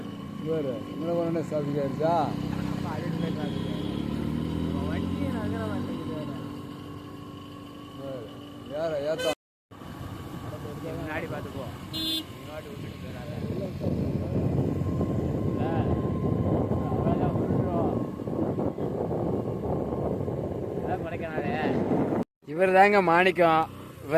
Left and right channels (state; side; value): identical; both; correlation 1.00